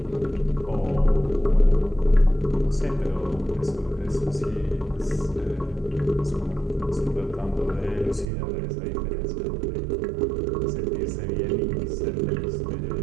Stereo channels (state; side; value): drops out; left; at 8.2 s